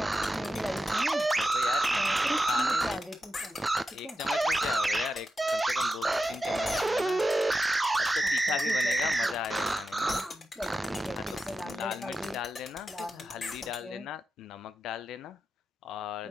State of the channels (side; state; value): both; normal; correlation 0.91